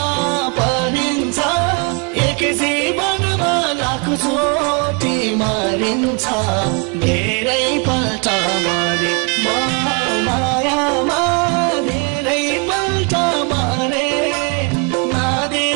परिन्छ एक जीवनमा लाखौं चोटि मरिन्छ धेरै पल्ट मरे मायामा धेरै पल्ट मरे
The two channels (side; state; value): left; quieter; 33.2 dB